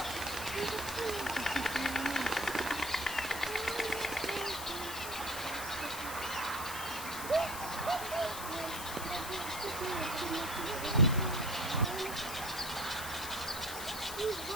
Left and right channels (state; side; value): noise; left; hiss, 8 dB below the sound